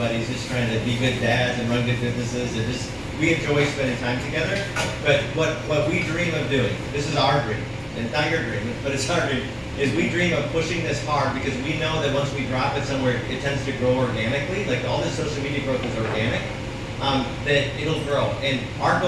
just trying to be good dads and run good businesses, and just we enjoy spending time together. But what we dream of doing, this is our dream, and not your dream, but it's our dream, is we dream of pushing this hard because we know that once we drop it somewhere, it tends to grow organically. Like all this social media growth is organic. That it'll grow. And our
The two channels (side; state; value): both; identical; correlation 1.00